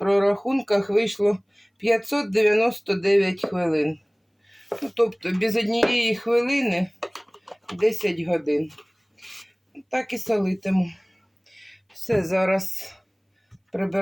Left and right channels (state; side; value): identical; both; correlation 1.00